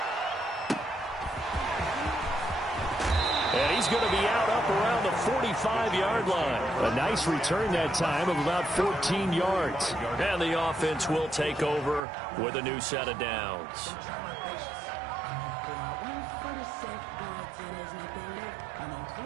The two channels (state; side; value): drops out; left; at 12.0 s